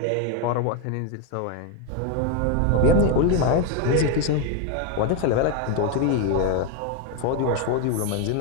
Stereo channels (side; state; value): both; different; correlation 0.02